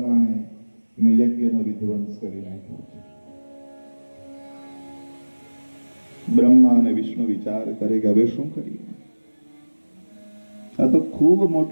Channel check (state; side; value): inverted; both; correlation -1.00